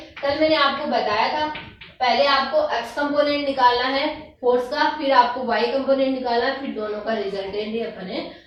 कल मैंने आपको बताया था पहले आपको x कंपोनेंट निकालना है फोर्स का, फिर आपको y कंपोनेंट निकालना है, फिर दोनों का रिजल्टेंट ही अपन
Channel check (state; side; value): identical; both; correlation 1.00